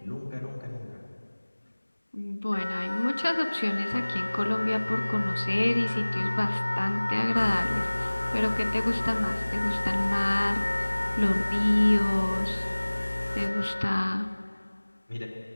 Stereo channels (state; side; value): inverted; both; correlation -1.00